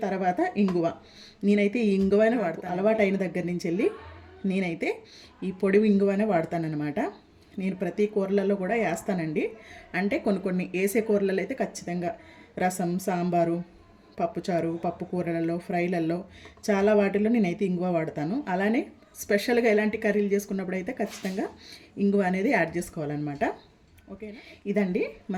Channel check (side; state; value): both; identical; correlation 1.00